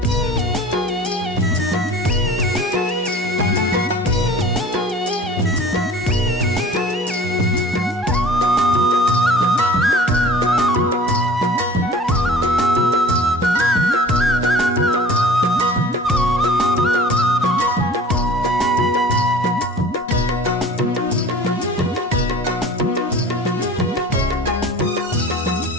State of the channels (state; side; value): normal; both; correlation 0.44